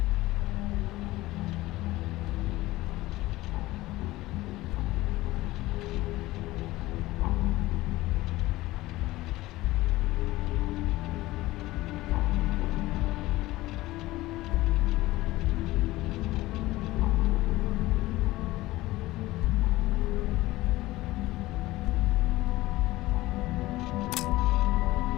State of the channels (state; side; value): quieter; right; 18.1 dB